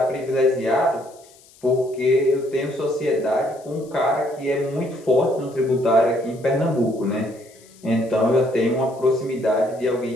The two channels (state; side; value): noise; left; hiss, 26 dB below the sound